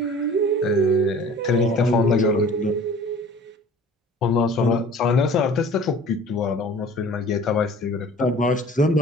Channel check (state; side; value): normal; both; correlation 0.46